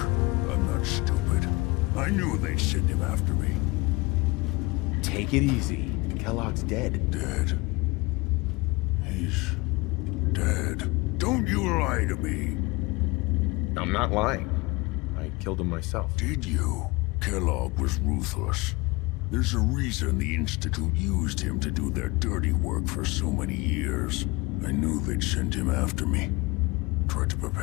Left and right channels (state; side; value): quieter; right; 23.7 dB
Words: I'm not stupid. I knew they'd send him after me. Take it easy. Kellogg's dead. Dead? He's dead. Don't you lie to me. I'm not lying. I killed him myself. Did you? Kellogg was ruthless. There's a reason the Institute used him to do their dirty work for so many years. I knew they'd send him after me. Tried to